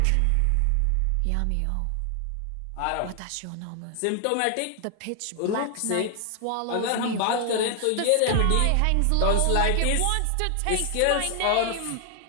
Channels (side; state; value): both; different; correlation 0.00